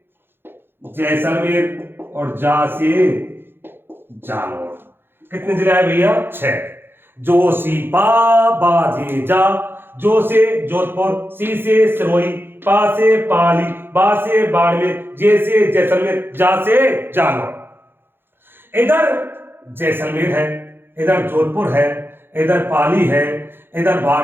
जैसलमेर और जा से जालौर। कितने जिले आए भैया? 6। जोशीपा बाजे जा। जो से जोधपुर, सी से सिरोही, पा से पाली, बा से बाड़मेर, जे से जैसलमेर, जा से जालौर। इधर जैसलमेर है, इधर जोधपुर है, इधर पाली है, इधर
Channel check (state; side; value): late; left; 0.10 ms